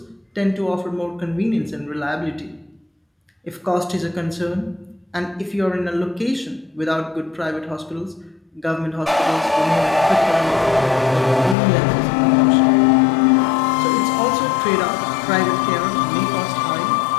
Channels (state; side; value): drops out; right; at 11.6 s